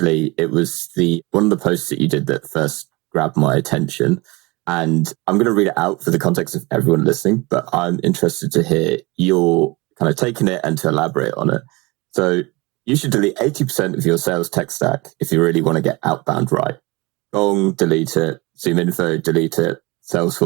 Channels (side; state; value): left; quieter; 24.2 dB